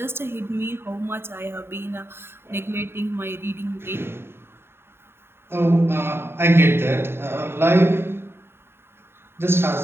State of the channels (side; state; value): left; late; 0.11 ms